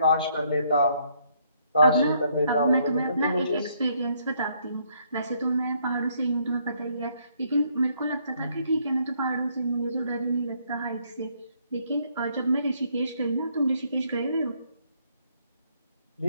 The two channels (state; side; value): inverted; both; correlation -0.69